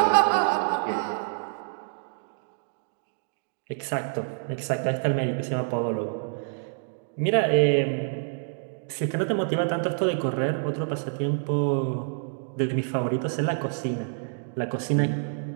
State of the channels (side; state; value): left; silent; digital silence